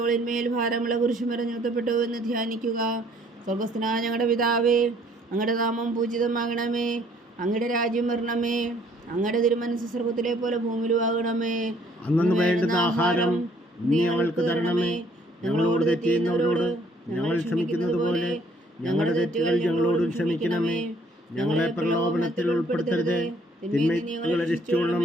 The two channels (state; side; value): normal; both; correlation 0.62